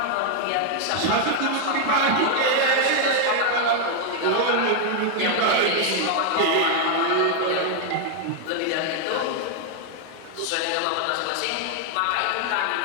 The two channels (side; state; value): both; different; correlation 0.00